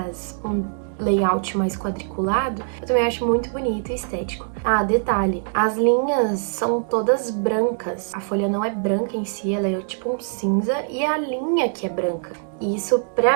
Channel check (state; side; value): silent; left; digital silence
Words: um layout mais quadriculado, eu também acho muito bonito e estético. Ah, detalhe, as linhas são todas brancas. A folha não é branca em si, ela é tipo um cinza e a linha que é branca. E isso,